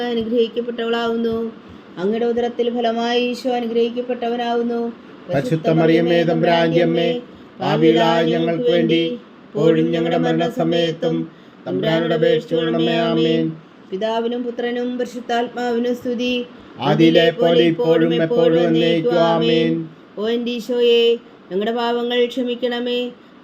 അനുഗ്രഹിക്കപ്പെട്ടവളാവുന്നു. അങ്ങയുടെ ഉദരത്തിൽ ഫലമായി ഈശോ അനുഗ്രഹിക്കപ്പെട്ടവനാവുന്നു. പരിശുദ്ധ മറിയമേ തമ്പുരാന്റെ അമ്മേ, പാപികളായ ഞങ്ങൾക്ക് വേണ്ടി ഇപ്പോഴും ഞങ്ങളുടെ മരണസമയത്തും തമ്പുരാനോട് അപേക്ഷിച്ചുകൊള്ളണമേ. ആമേൻ. പിതാവിനും പുത്രനും പരിശുദ്ധാത്മാവിനും സ്തുതി, ആദിയിലെ പോലെ ഇപ്പോഴും എപ്പോഴും എന്നേക്കും. ആമേൻ. ഓ എൻ്റെ ഈശോയെ, ഞങ്ങളുടെ പാപങ്ങൾ ക്ഷമിക്കണമേ.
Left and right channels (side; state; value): both; identical; correlation 1.00